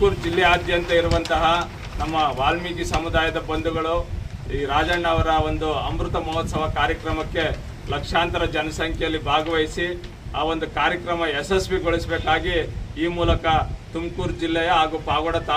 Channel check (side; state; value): both; identical; correlation 1.00